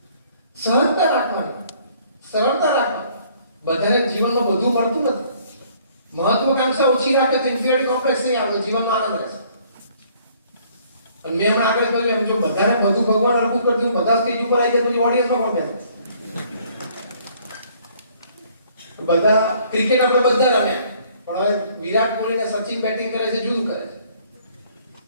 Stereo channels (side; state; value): both; inverted; correlation -0.60